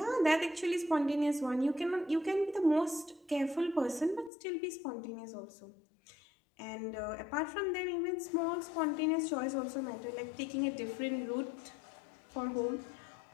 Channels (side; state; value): right; drops out; at 4.3 s